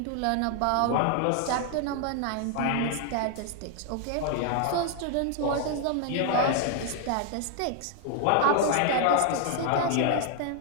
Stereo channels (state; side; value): different; both; correlation 0.00